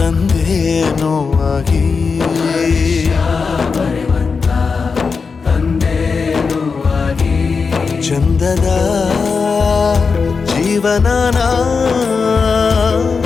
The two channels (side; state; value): right; quieter; 5.0 dB